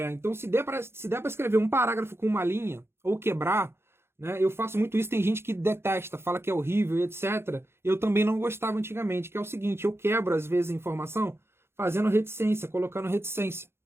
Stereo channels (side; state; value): left; late; 0.12 ms